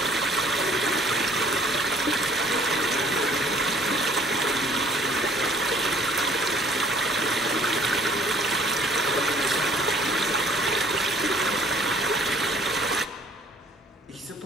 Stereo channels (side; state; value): both; normal; correlation 0.57